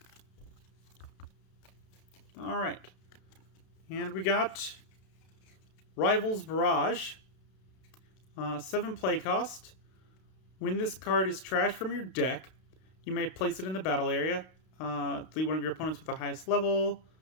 Alright. And we got Rivals Barrage. 7 play cost. When this card is trashed from your deck, you may place it in the battle area. Delete one of your opponents with the highest level.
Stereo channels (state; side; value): late; right; 32 ms